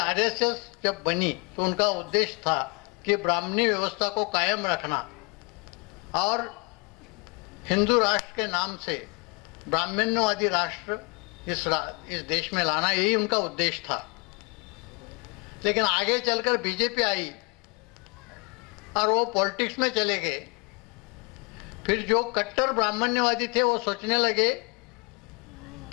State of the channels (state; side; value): quieter; right; 31.1 dB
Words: जब बनी तो उनका उद्देश्य था कि ब्राह्मणी व्यवस्था को कायम रखना और हिंदू राष्ट्र के नाम से ब्राह्मण्यवादी राष्ट्र इस देश में लाना, यही उनका उद्देश्य था। लेकिन आगे चलकर बीजेपी आई और वो पॉलिटिक्स में चले गए। फिर जो कट्टर ब्राह्मण्यवादी थे वो सोचने लगे